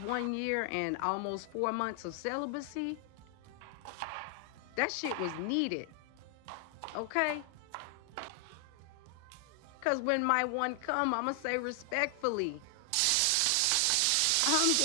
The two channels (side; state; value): both; different; correlation 0.00